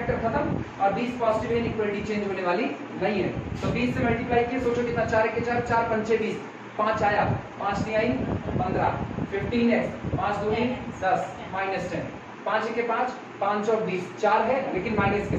खत्म, और 20 पॉजिटिव इनइक्वालिटी चेंज होने वाली नहीं है, तो 20 से मल्टीप्लाई किए, सोचो कितना 4 के 4, 4 पंचे 20, 5 आया, 5 नहीं आई 15, 15x, 5 दूनी 10 -10, 5 के 5, 5 और 20 4 है लेकिन माइनस के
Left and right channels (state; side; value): identical; both; correlation 1.00